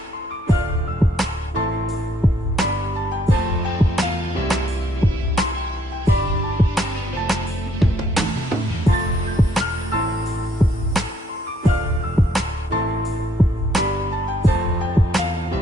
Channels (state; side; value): normal; both; correlation 0.67